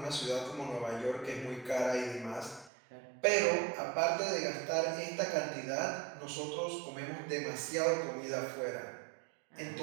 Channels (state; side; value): drops out; left; at 2.7 s